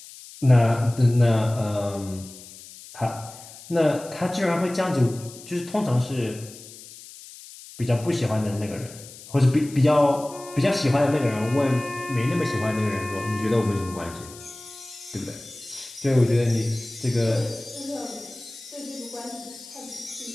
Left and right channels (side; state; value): left; noise; hiss, 17 dB below the sound